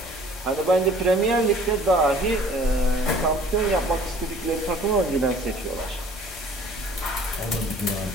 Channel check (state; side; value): normal; both; correlation 0.52